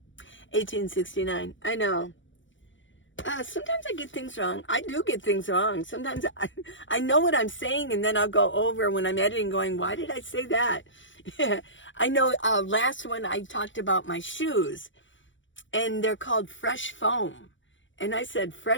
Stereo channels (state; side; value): late; right; 0.55 ms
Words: 1869. I know. Sometimes I get things wrong. I do get things wrong. Sometimes I know what I'm saying, and then I'll go over when I'm editing going, why did I say that? I know last one I talked about my shoes, and they're called Fresh Foam. And I said